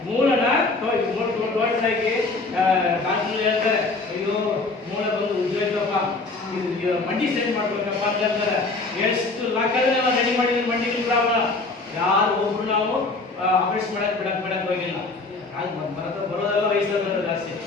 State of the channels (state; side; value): quieter; right; 3.6 dB